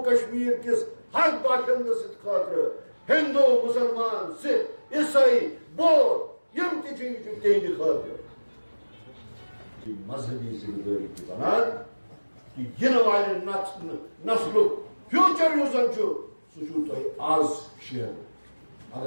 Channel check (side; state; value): both; inverted; correlation -1.00